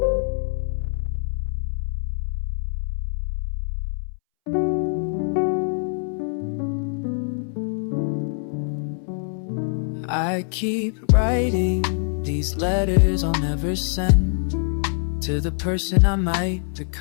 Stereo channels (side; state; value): right; silent; 63 dB below the other